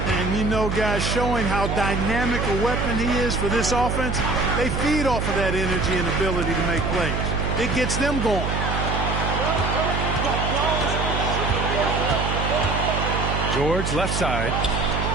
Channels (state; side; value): noise; right; hum, 1 dB below the sound